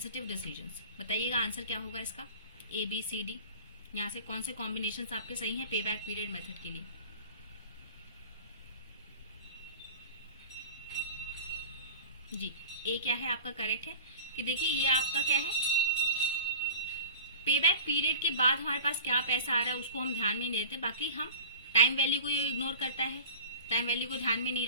decisions, बताइएगा आंसर क्या होगा इसका, ए बी सी डी, यहाँ से कौन से कॉम्बिनेशन आपके सही हैं पे बैक पीरियड मेथड के लिए। जी, ए क्या है आपका करेक्ट है, कि देखिए ये आपका क्या है, पे बैक पीरियड के बाद हमारे पास क्या पैसा आ रहा है उसको हम ध्यान में नहीं देते, बाकी हम टाइम वैल्यू को ये इग्नोर करता है, टाइम वैल्यू को ध्यान में नहीं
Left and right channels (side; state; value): both; inverted; correlation -0.38